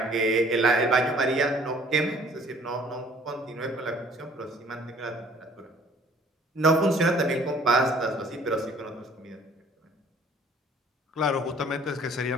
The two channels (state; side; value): normal; both; correlation 0.56